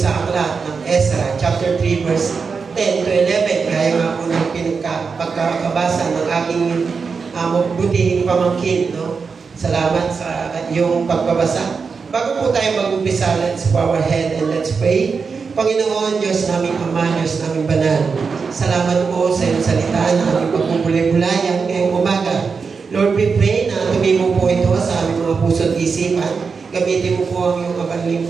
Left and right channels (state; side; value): quieter; left; 5.2 dB